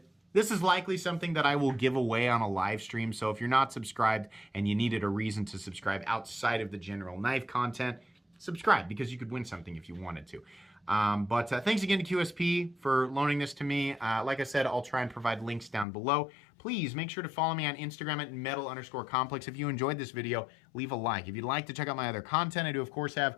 This is likely something that I will give away on a live stream, so if you're not subscribed and you needed a reason to subscribe outside of the general knife content, subscribe because you could win something if you wanted to. But thanks again to QSP for loaning this to me. Like I said, I'll try and provide links down below. Please make sure to follow me on Instagram at metal_complex. If you enjoyed this video, leave a like. If you'd like to check out my other content, I do of course have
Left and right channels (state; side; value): drops out; right; at 15.9 s